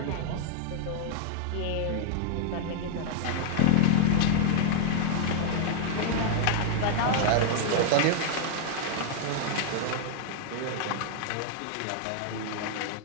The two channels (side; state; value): both; different; correlation 0.00